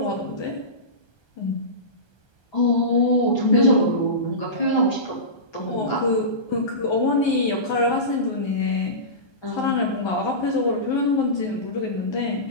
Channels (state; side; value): late; right; 1.3 ms